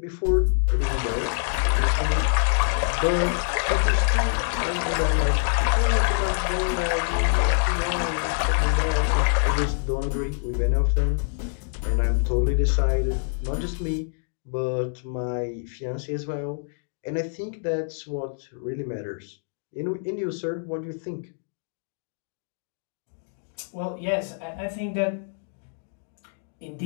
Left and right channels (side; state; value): right; silent; digital silence